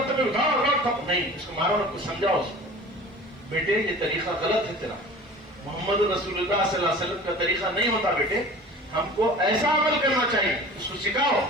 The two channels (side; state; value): both; normal; correlation 0.41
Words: بطور نہیں اس کو مارو کو سمجھاؤ اس کو بیٹے یہ طریقہ غلط ہے تیرا محمد رسول اللہ صلی اللہ علیہ وسلم کا طریقہ نہیں ہوتا بیٹے ہم کو ایسا عمل کرنا چاہیے اس کو سکھاؤ